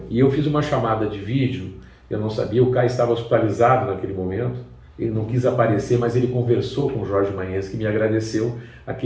E eu fiz uma chamada de vídeo, eu não sabia, o K estava hospitalizado naquele momento, ele não quis aparecer, mas ele conversou com o Jorge Maenski e me agradeceu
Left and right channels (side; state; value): both; identical; correlation 1.00